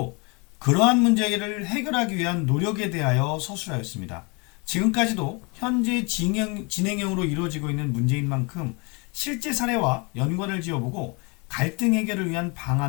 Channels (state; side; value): quieter; right; 30.5 dB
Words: 그러한 문제를 해결하기 위한 노력에 대하여 서술하였습니다. 지금까지도 현재 진행형으로 이루어지고 있는 문제인 만큼 실제 사례와 연관을 지어보고 갈등 해결을 위한